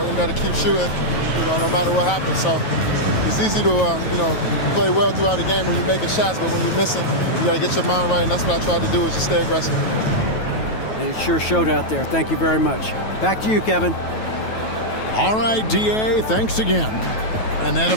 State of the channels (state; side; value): late; right; 9.2 ms